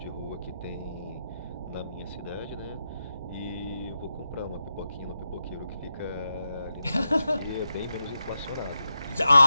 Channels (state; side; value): inverted; both; correlation -0.88